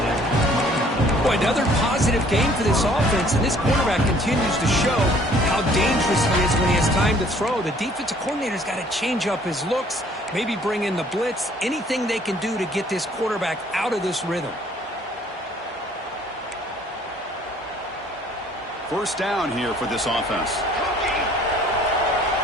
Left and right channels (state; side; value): normal; both; correlation 0.58